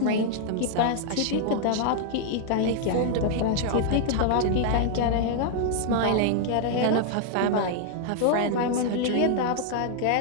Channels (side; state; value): both; different; correlation -0.01